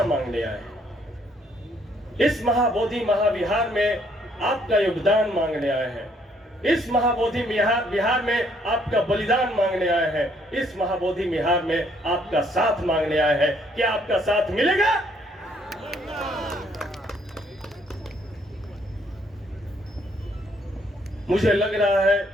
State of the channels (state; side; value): normal; both; correlation 0.67